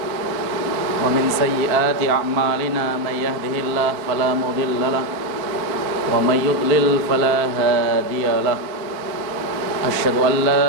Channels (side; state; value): left; late; 4.4 ms